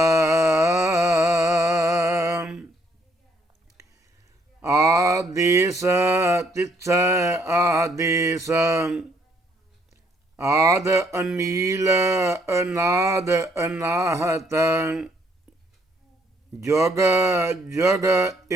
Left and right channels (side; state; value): both; normal; correlation 0.68